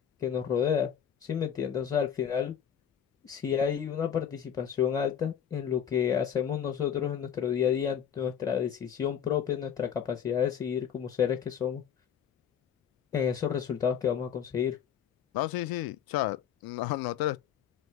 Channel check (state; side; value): quieter; right; 8.5 dB